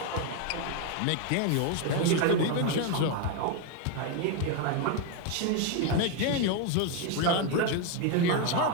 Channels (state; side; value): different; both; correlation 0.01